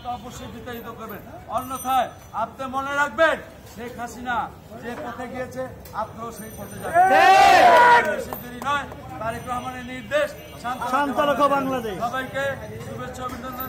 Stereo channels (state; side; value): identical; both; correlation 1.00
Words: অবশ্যই বিতাড়িত করবেন। অন্যথায় আপনি মনে রাখবেন শেখ হাসিনা যে পথে গিয়েছে আপনিও সেই পথে যাবেন। বেশি দেরি নয়, তারেক রহমানের নির্দেশ বাংলাদেশ। সবাইকে শুভেচ্ছা অভিনন্দন